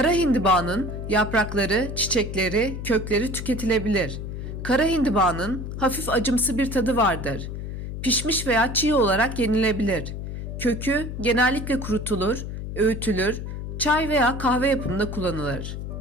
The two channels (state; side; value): noise; left; hum, 6 dB below the sound